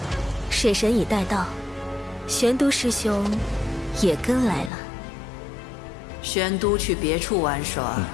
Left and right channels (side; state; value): right; drops out; at 4.7 s